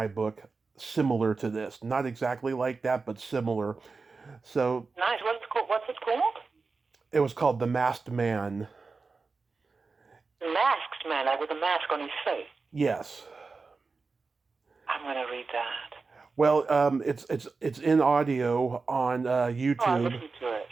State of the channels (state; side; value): quieter; left; 4.3 dB